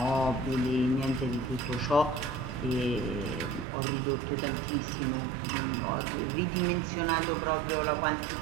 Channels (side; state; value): left; drops out; at 3.7 s